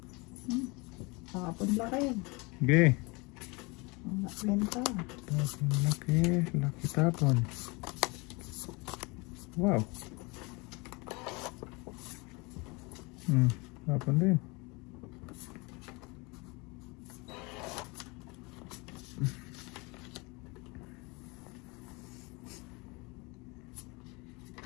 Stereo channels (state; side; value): quieter; right; 27.3 dB